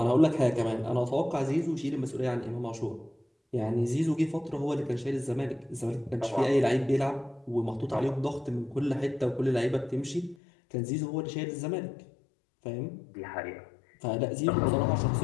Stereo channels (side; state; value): right; drops out; at 10.4 s